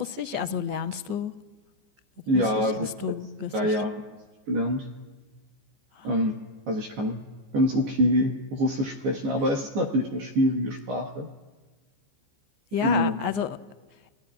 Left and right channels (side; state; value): left; late; 14 ms